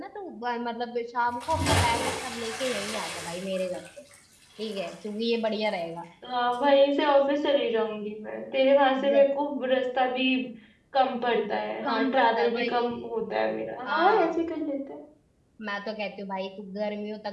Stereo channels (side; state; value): both; identical; correlation 1.00